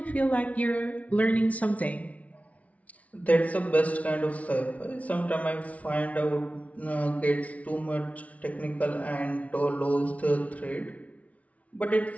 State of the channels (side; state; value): right; late; 0.067 ms